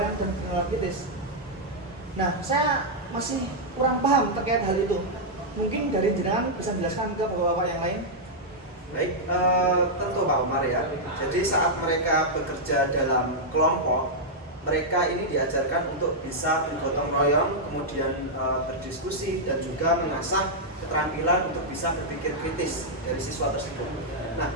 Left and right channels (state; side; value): normal; both; correlation -0.05